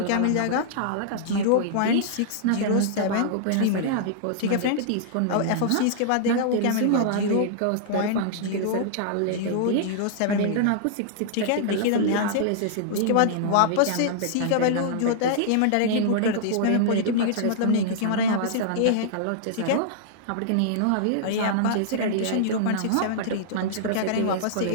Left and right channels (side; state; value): both; different; correlation -0.02